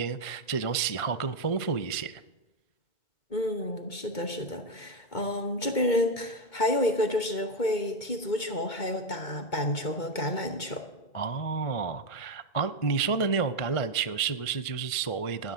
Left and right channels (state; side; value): late; right; 2.2 ms